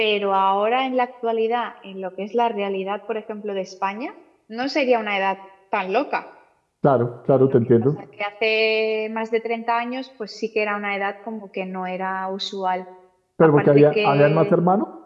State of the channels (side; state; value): both; identical; correlation 1.00